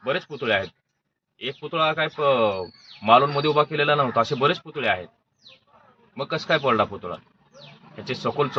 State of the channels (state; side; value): identical; both; correlation 1.00